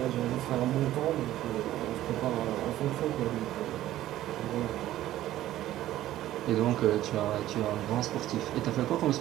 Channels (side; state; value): left; quieter; 14.0 dB